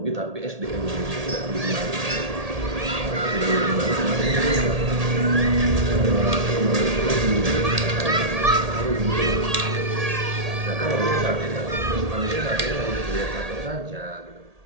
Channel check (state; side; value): late; left; 1.8 ms